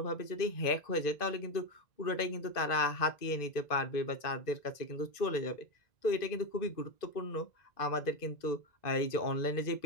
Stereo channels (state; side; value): late; right; 1.9 ms